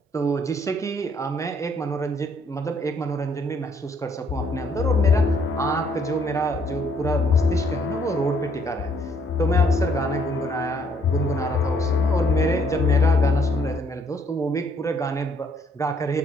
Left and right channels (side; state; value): both; normal; correlation 0.67